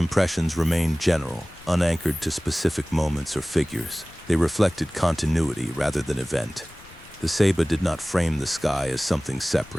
remained general, unanchored to specific moments or figures. They reflected continuity rather than event. The Ceiba did not frame the sky as something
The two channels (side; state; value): left; noise; rumble, 22 dB below the sound